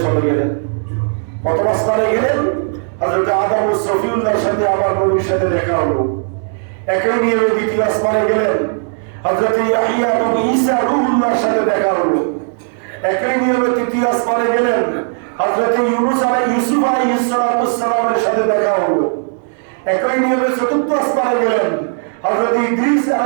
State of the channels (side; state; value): left; silent; 65 dB below the other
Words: চলে গেলেন। প্রথম আসমানে গেলেন, হযরত আদম ও সফিউল্লাহর সাথে আমার নবীর সাথে দেখা হলো। একই নিয়মে দ্বিতীয় আসমানে গেলেন। হযরত ইয়াহইয়া এবং ঈসা রূহুল্লাহর সাথে দেখা হলো। একই নিয়মে তৃতীয় আসমানে গেলেন। হযরত ইউসুফ আলাইহিস সালামের সাথে দেখা হলো। একই নিয়মে চতুর্থ আসমানে গেলেন। হযরত ইদ্রিস